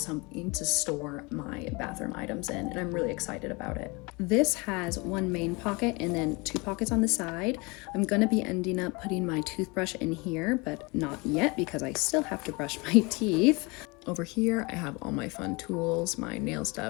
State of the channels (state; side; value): quieter; right; 27.0 dB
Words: to store my bathroom items in, and I'm really excited about it. This has 1 main pocket and then 2 pockets on the side. I'm gonna be ending up putting my toothbrush in here, but not yet because I still have to brush my teeth. Over here, I have all my fun tools, my nail